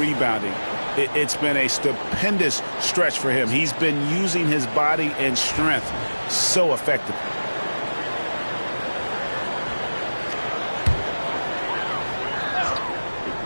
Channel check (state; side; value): inverted; both; correlation -1.00